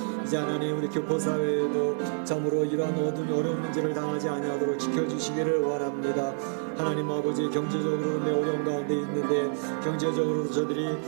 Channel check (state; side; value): silent; left; digital silence